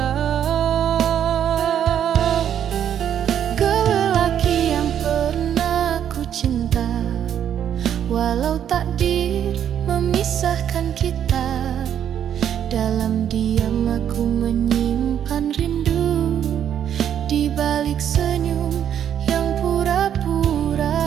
Kau lelaki yang pernah ku cinta, walau takdir memisahkan kita. Dalam diam aku menyimpan rindu di balik senyum yang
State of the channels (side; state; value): left; quieter; 9.5 dB